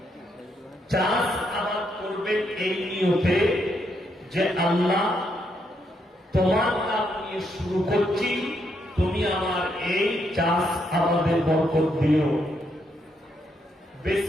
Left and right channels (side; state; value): both; normal; correlation 0.77